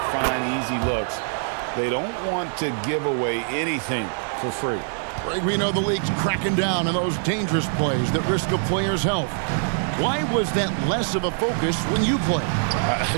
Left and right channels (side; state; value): left; silent; digital silence